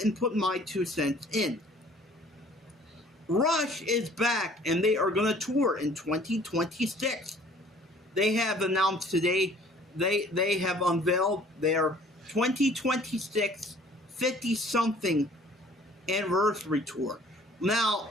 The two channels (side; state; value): both; normal; correlation 0.54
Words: and put my 2 cents in. Rush is back, and they are going to tour in 2026. They have announced today, they have unveiled their 2026 50-something anniversary tour. Now,